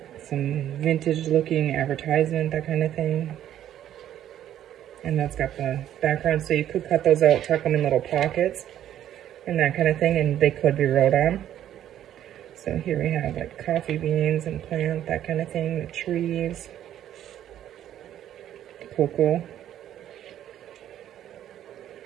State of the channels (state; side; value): quieter; left; 11.3 dB